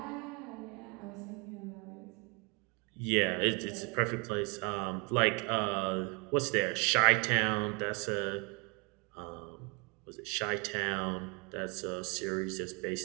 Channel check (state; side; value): quieter; left; 31.6 dB